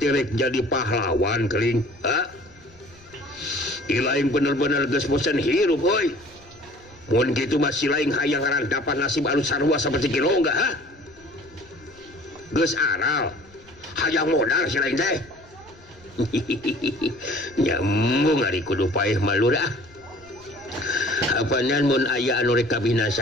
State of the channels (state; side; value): noise; left; rumble, 27 dB below the sound